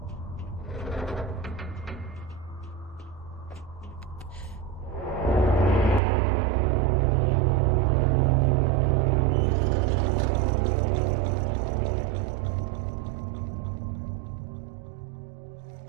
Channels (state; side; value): drops out; left; at 6.0 s